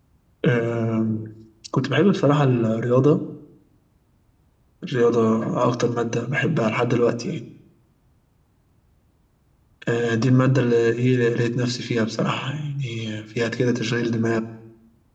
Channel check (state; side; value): identical; both; correlation 1.00